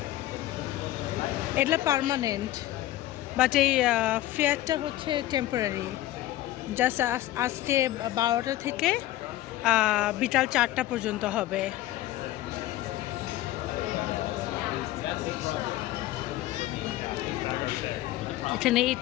এটা permanent, but এই ফেয়ারটা হচ্ছে temporary. Just আজকে 12টা থেকে বিকাল 4টা পর্যন্ত হবে। এখানে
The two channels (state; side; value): quieter; right; 15.3 dB